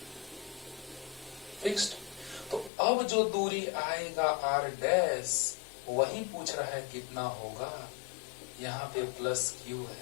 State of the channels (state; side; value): drops out; right; at 2.7 s